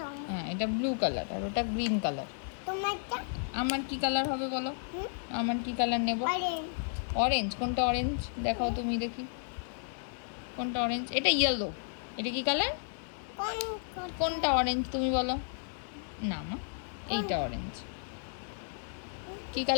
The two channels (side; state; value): right; silent; 56 dB below the other